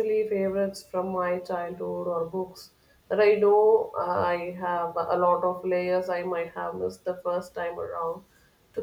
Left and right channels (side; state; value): both; identical; correlation 1.00